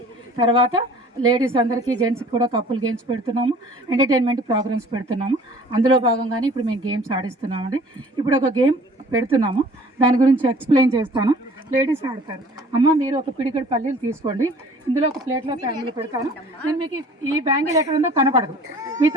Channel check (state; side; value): normal; both; correlation 0.50